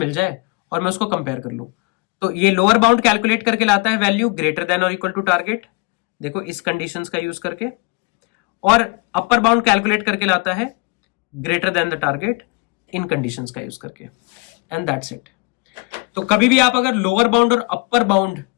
जाए और मैं उसको कंपेयर कर लूं। तो ये लोअर बाउंड कैलकुलेट करके लाता है वैल्यू ग्रेटर देन और इक्वल टू टारगेट, देखो इस कंडीशंस का यूज करके। और अपर बाउंड कैलकुलेट करके लाता है greater than the target in conditions का यूज करके, एंड दैट्स इट। तो कभी भी आप अगर लोअर बाउंड और अपर बाउंड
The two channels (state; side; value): quieter; right; 28.8 dB